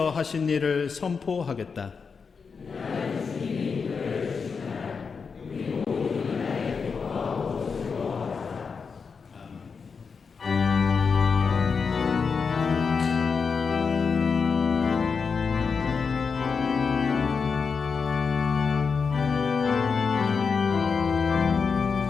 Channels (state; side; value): quieter; right; 5.5 dB